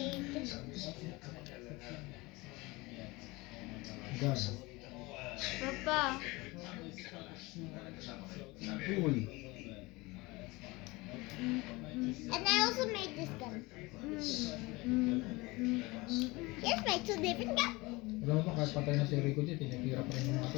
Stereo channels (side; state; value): right; quieter; 23.0 dB